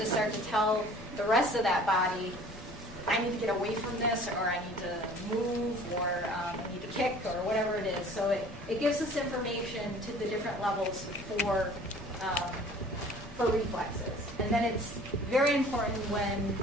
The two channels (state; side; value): normal; both; correlation 0.49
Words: start to tell the rest of that body, I need to get away from this, or I need to move, or I need to kick, or whatever it is. So it gives us information to the different levels for reflexes. And then it's very important when